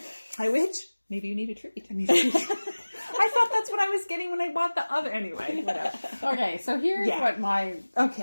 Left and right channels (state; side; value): inverted; both; correlation -1.00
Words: I wish. Maybe you need a treat. I thought that's what I was getting when I bought the other. Anyway, whatever. Okay, so here's what my